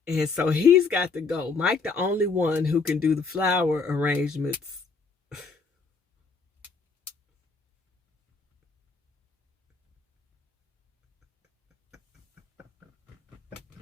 and so he's got to go. Mike, the only one who can do the flower arrangements.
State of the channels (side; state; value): right; quieter; 4.5 dB